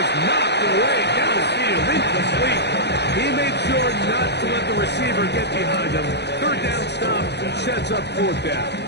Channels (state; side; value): late; right; 0.49 ms